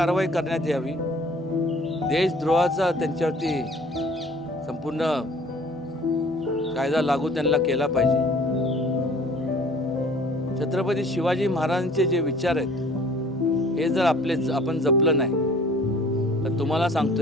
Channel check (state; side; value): normal; both; correlation 0.51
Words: करण्यात यावी। देशद्रोहाचा त्यांच्यावरती संपूर्ण कायदा लागू त्यांना केला पाहिजे। छत्रपती शिवाजी महाराजांचे जे विचार आहेत हे जर आपण जपलं नाही तर तुम्हाला